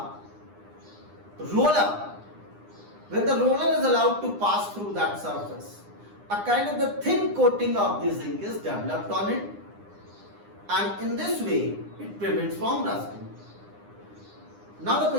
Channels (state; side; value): late; left; 9.8 ms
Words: roller, when the roller is allowed to pass through that surface, a kind of the thin coating of the zinc is developed on it, and in this way it prevents from rusting. Now the